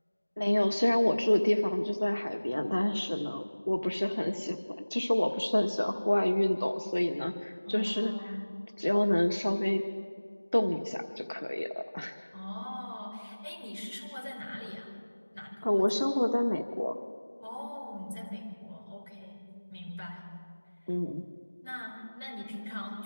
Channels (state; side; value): inverted; both; correlation -1.00